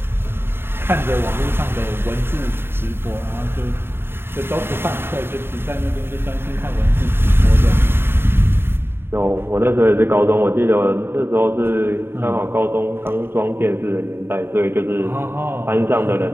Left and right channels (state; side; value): late; left; 0.11 ms